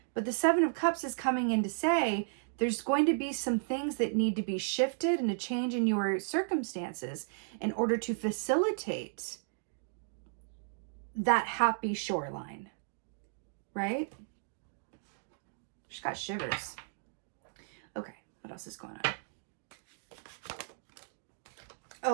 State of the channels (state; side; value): silent; left; digital silence